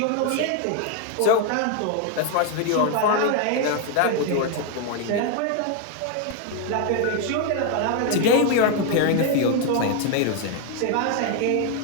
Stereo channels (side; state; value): both; different; correlation 0.01